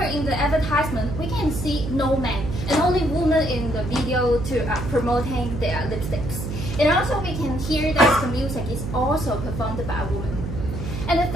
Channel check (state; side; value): noise; right; hum, 6 dB below the sound